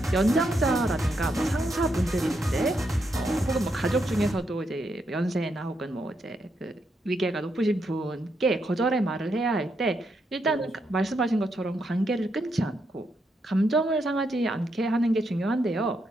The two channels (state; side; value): normal; both; correlation 0.80